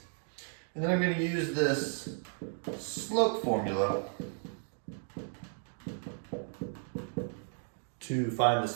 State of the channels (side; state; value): left; silent; 55 dB below the other